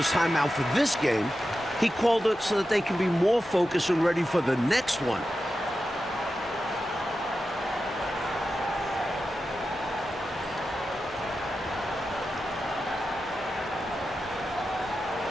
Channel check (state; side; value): normal; both; correlation 0.91